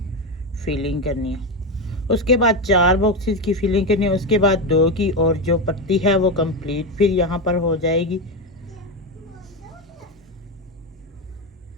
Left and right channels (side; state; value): both; normal; correlation 0.13